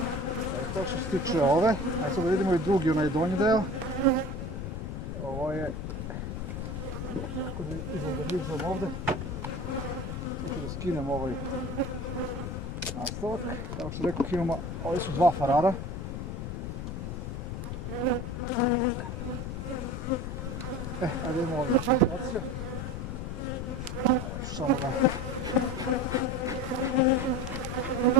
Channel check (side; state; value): left; noise; rumble, 5 dB below the sound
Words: To što se tiče ove. Ajde sad da vidimo i drugi, onaj donji deo. Ovo je... Kako da izorganizam ovdje. Sad ću da skinem ovaj nastavak. Kao što rekao, imamo, ovi su 2 farara. Ajde imamo ovdje situacija. Samo da...